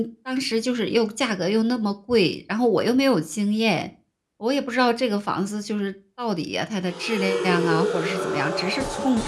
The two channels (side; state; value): both; identical; correlation 1.00